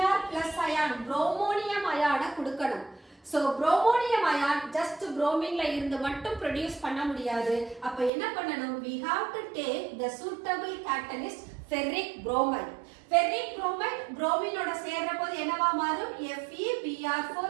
plus ion bromonium ion கொடுக்கணும். So bromonium ion just bromine ல இருந்து மட்டும் produce பண்ண முடியாது. அப்ப என்ன பண்ணணும், we have to take the suitable catalyst ferric bromide. ferric bromide bromine ஓட சேர்ற போது என்னவா மாறும், FeBr4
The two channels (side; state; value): left; drops out; at 8.1 s